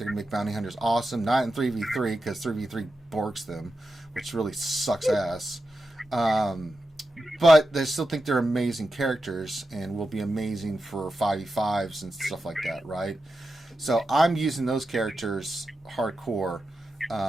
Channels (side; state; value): both; normal; correlation 0.90